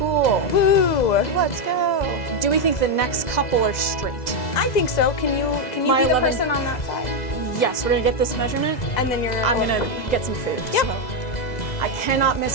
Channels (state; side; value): late; right; 2.0 ms